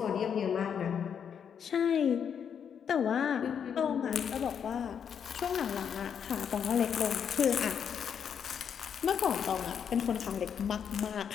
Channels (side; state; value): right; quieter; 7.7 dB